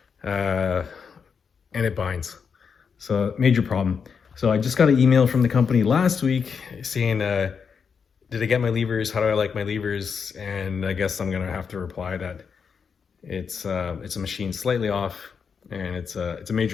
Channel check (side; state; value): right; quieter; 6.2 dB